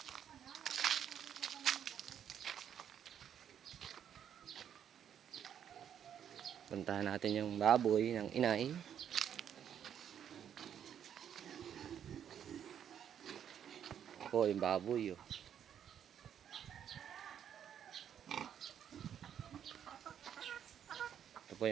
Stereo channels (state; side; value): quieter; left; 9.1 dB